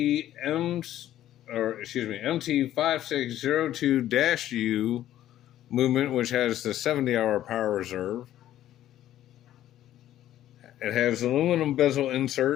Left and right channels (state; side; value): quieter; right; 12.7 dB